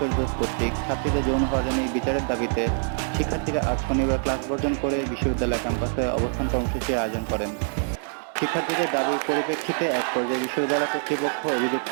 কর্তৃক ছাত্রীদের যৌন হয়রানির বিচারের দাবিতে শিক্ষার্থীরা আজ শনিবার ক্লাস বর্জন করে বিশ্ববিদ্যালয় ক্যাম্পাসে অবস্থান কর্মসূচির আয়োজন করেন। শিক্ষার্থীদের দাবির পরিপ্রেক্ষিতে এক পর্যায়ে বিশ্ববিদ্যালয় কর্তৃপক্ষ অভিযুক্ত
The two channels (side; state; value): left; silent; 62 dB below the other